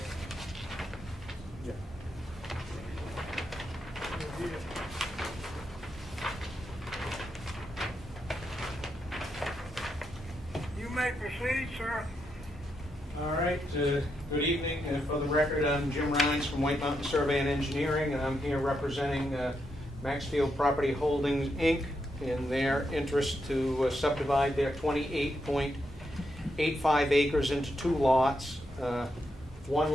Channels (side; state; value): both; normal; correlation 0.82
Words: You may proceed, sir. All right, good evening. For the record, I'm Jim Rhines from White Mountain Survey and Engineering, and I'm here representing Maxfield Property Holdings, Inc. in their interest to subdivide their 28.85 acres into two lots. One